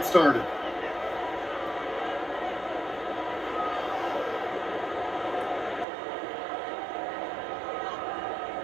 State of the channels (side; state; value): left; drops out; at 5.9 s